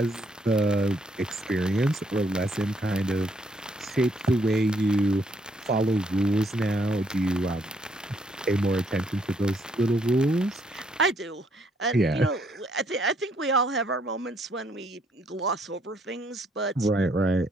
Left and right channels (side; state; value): both; normal; correlation 0.70